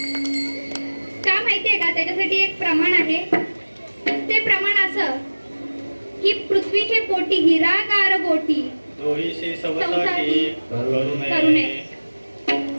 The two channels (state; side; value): inverted; both; correlation -1.00